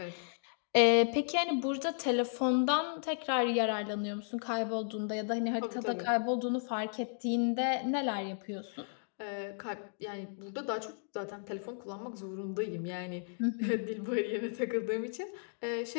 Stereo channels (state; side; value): silent; right; digital silence